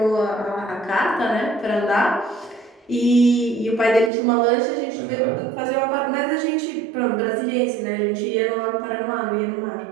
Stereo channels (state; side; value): drops out; left; at 4.1 s